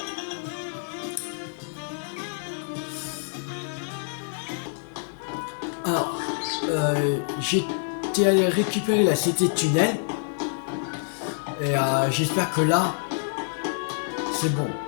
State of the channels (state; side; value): silent; right; digital silence